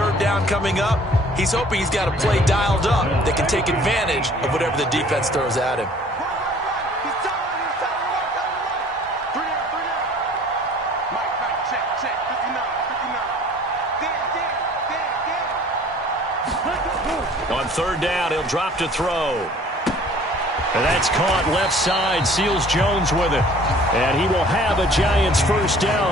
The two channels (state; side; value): normal; both; correlation 0.52